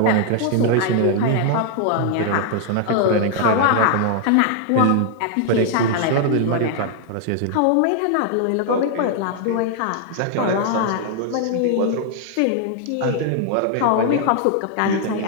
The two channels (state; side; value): different; both; correlation 0.00